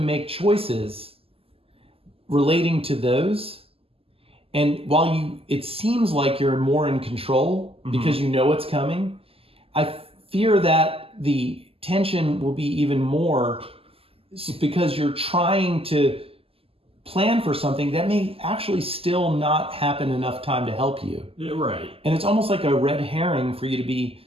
choices relating to those. And while it seems like you're more in control because you know what's coming, I fear that the tension will be even more because you're trying to plan for something that may actually still not happen enough time to help you. Yeah, right. And it's almost like a red herring for you to be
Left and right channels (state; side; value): late; left; 0.28 ms